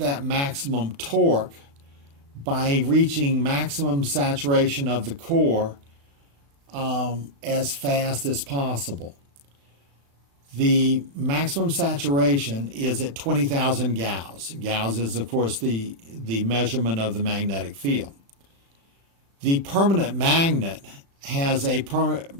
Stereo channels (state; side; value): late; left; 36 ms